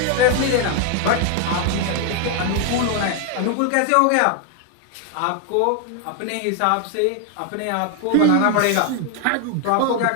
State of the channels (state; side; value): different; both; correlation 0.00